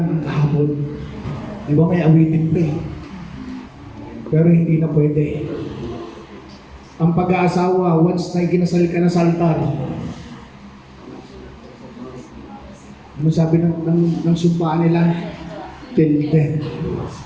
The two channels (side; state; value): both; identical; correlation 1.00